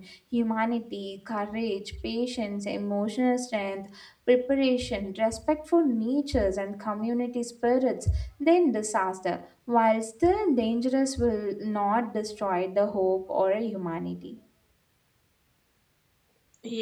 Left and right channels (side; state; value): both; identical; correlation 1.00